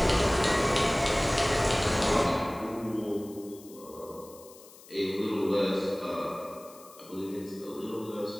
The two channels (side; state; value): left; noise; hiss, 21 dB below the sound